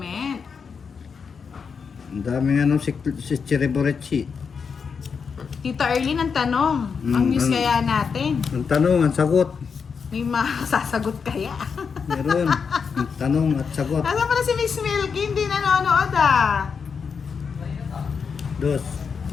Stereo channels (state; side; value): quieter; right; 5.9 dB